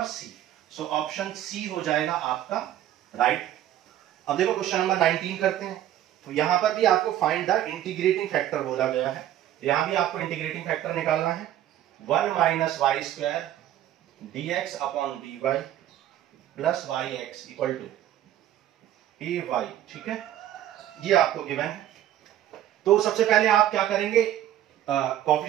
C. So option C हो जाएगा आपका राइट। अब देखो क्वेश्चन नंबर 19 करते हैं, तो यहां पर भी आपको फाइंड द इंटीग्रेटिंग फैक्टर बोला गया है। यहां भी आपको इंटीग्रेटिंग फैक्टर निकालना है 1 minus y square dx upon dy plus y x equal to a y. ठीक है, ये आपको गिवन है। तो सबसे पहले आप क्या करेंगे,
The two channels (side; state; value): left; quieter; 12.2 dB